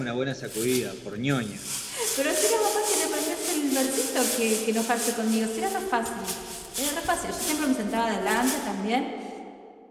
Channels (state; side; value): identical; both; correlation 1.00